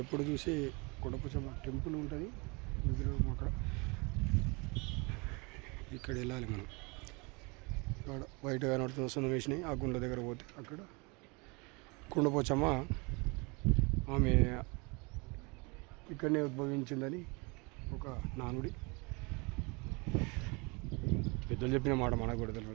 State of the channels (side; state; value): left; quieter; 28.8 dB